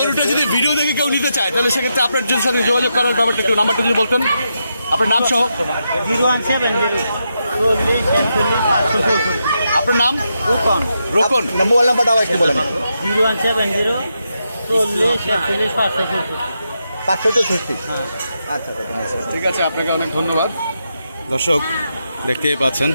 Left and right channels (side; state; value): both; inverted; correlation -0.84